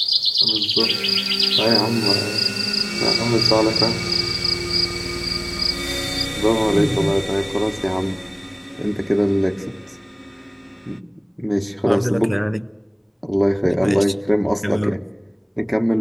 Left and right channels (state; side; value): identical; both; correlation 1.00